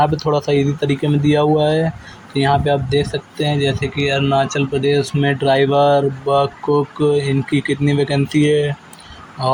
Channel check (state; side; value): identical; both; correlation 1.00